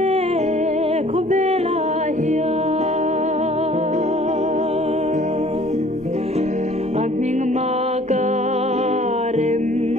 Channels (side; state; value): both; normal; correlation 0.54